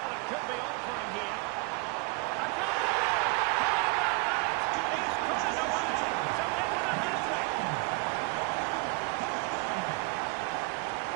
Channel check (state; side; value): quieter; left; 27.8 dB